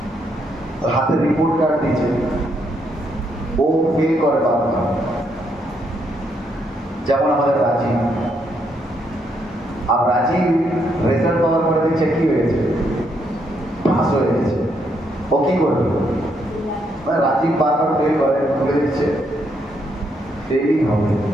হাতে রিপোর্ট কার্ড দিয়েছে, ও ফেল করে বারবার। যেমন আমাদের রাজি, আর রাজি রেজাল্ট পাওয়ার পরে দেখছে কি হয়েছে, পাস হয়ে গেছে। ও কি করবে? মানে রাজি বারবার ফেল করে, খুলে দিচ্ছে ফেলই হবে,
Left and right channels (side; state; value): both; normal; correlation 0.75